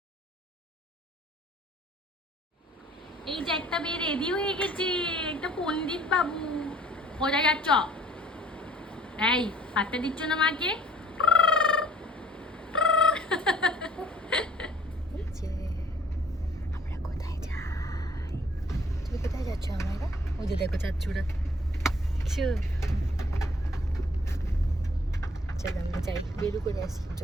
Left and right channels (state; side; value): normal; both; correlation 0.56